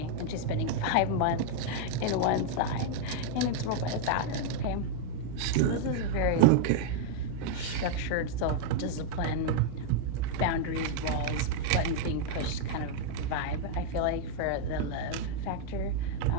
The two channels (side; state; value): both; different; correlation -0.01